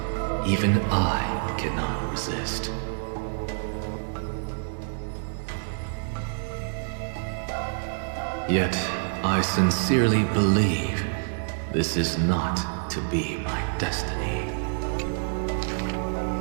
even I cannot resist. Yet, I sincerely believe this is not to be my destiny.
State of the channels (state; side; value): silent; left; digital silence